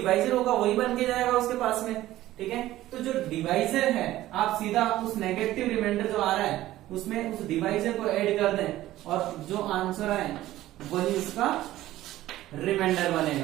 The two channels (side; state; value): left; quieter; 15.1 dB